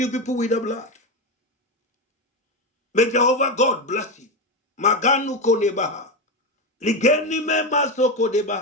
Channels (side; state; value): both; normal; correlation 0.14